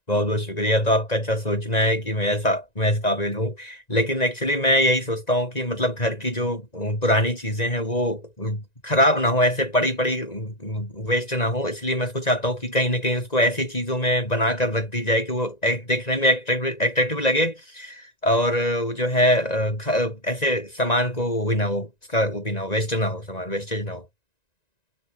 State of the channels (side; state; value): right; late; 1.9 ms